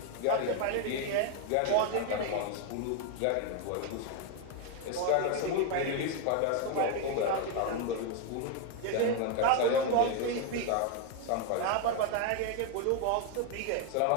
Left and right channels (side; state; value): both; different; correlation 0.01